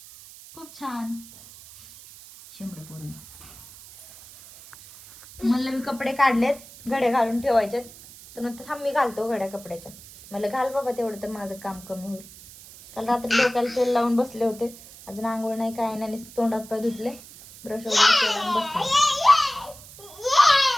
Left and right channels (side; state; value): right; noise; hiss, 19 dB below the sound